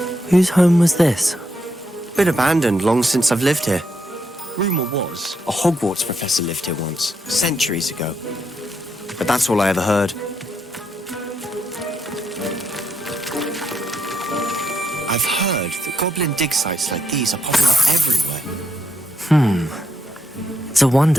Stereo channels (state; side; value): normal; both; correlation 0.79